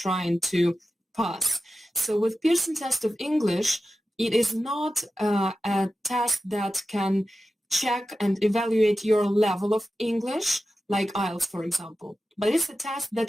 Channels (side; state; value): both; normal; correlation 0.93